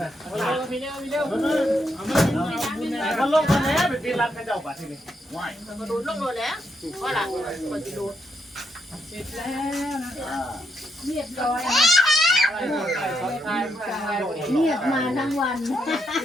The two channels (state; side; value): normal; both; correlation 0.79